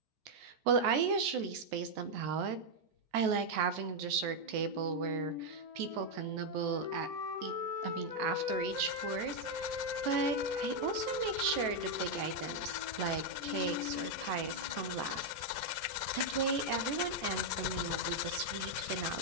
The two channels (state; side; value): late; left; 14 ms